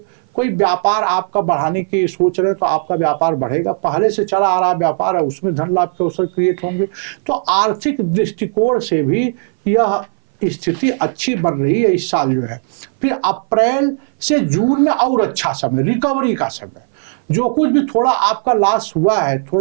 कोई व्यापार आपका बढ़ाने की सोच रहे हैं तो आपका व्यापार बढ़ेगा। पहले से चला आ रहा व्यापार है, उसमें धन लाभ के अवसर क्रिएट होंगे। तो आर्थिक दृष्टिकोण से भी यह स्थिति अच्छी बन रही है इस साल जो है। फिर अप्रैल से जून में और अच्छा समय, रिकवरी का समय। जो कुछ भी थोड़ा आपका लॉस हुआ है,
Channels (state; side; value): silent; left; 60 dB below the other